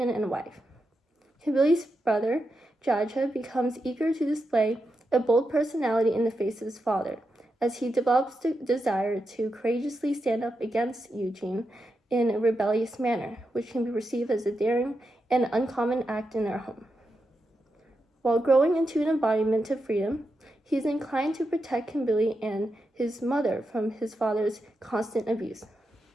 and wife. Kimberly's brother, Jaja, becomes eager to display a bold personality in the face of his father, as he develops the desire to courageously stand up against Eugene in a rebellious manner, which can be perceived as a daring and uncommon act in their home. While growing into an embodiment of freedom, he is inclined to protect Kimberly and his mother from his father's constant abuse.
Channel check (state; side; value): normal; both; correlation 0.87